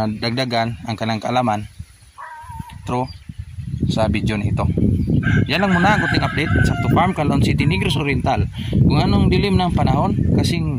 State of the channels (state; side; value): identical; both; correlation 1.00